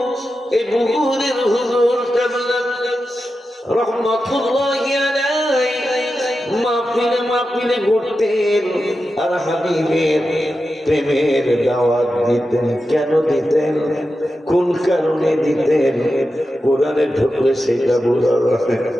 এই বুহুরের হুজুর কেবলা রহমাতুল্লাহি আলাইহি মাহফিলে ঘুরতেন আর হাবিবের প্রেমের দাওয়াত দিতেন। কেন দিতেন, কোন কারণে দিতেন? কোরআনে ঢুকলে সেটা বোঝা যায়,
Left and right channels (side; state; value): both; normal; correlation 0.91